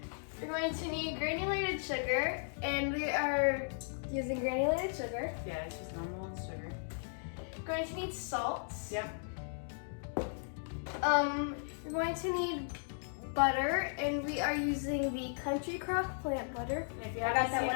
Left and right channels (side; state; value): right; silent; digital silence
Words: We're going to need granulated sugar, and we are using granulated sugar. Yeah, it's just normal sugar. We're going to need salt. Yep. You're going to need butter, and we are using the Country Crock plant butter. And if you haven't seen